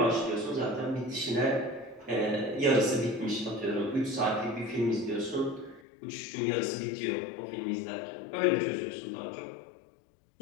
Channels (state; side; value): drops out; right; at 5.8 s